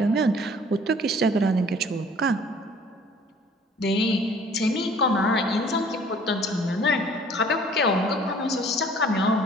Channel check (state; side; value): normal; both; correlation 0.53